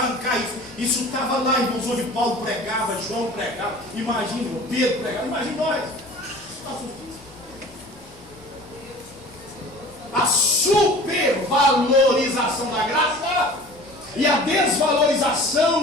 isso. Isso estava lá, irmãos, onde Paulo pregava, João pregava, imagina, Pedro pregava, imagina nós. A supervalorização da graça e a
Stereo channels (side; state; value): left; noise; hum, 27 dB below the sound